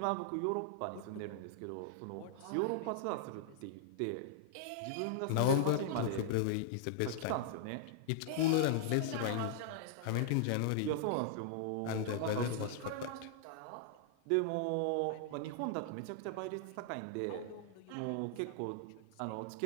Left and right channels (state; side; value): different; both; correlation -0.01